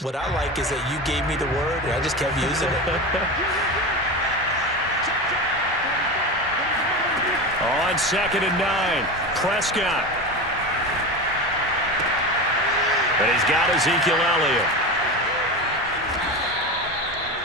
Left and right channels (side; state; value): both; normal; correlation 0.24